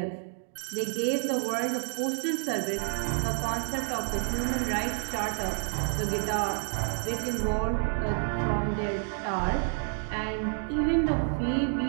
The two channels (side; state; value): left; silent; 56 dB below the other